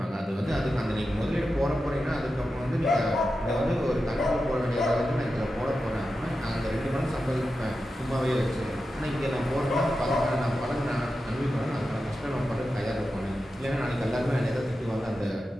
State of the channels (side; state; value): both; normal; correlation 0.91